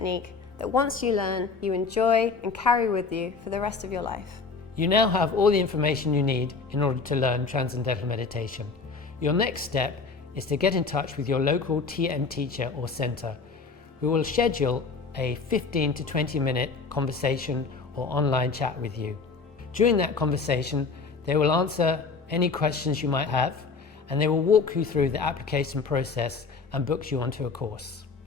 that once you learn, you enjoy and carry with you for the rest of your life. You now have all the information you need in order to learn Transcendental Meditation. Your next step is to get in touch with your local TM teacher or centre, who will schedule a 15 to 20 minute conversation or online chat with you. During that conversation, they will answer any questions you might have, and they will walk you through the application process and book you onto a course.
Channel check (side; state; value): right; quieter; 4.7 dB